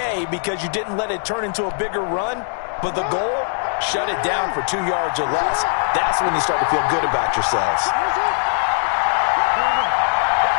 because you didn't let it turn into a bigger run, but the goal, shut it down for 2 yards or less. That's when you start to feel good about yourselves.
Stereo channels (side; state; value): right; silent; digital silence